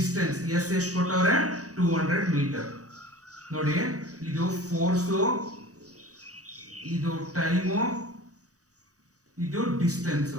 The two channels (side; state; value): left; late; 0.66 ms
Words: ಎಸ್ ಎಷ್ಟು ಕೊಟ್ಟವ್ರೆ, 200 ಮೀಟರ್. ನೋಡಿ, ಇದು ಫೋರ್ಸು, ಇದು ಟೈಮು, ಇದು ಡಿಸ್ಟೆನ್ಸ್.